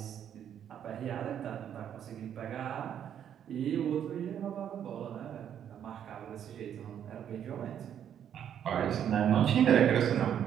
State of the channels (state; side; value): quieter; left; 9.4 dB